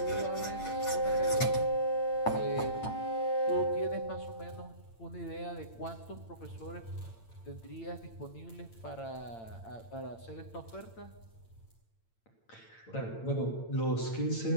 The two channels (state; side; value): late; right; 8.8 ms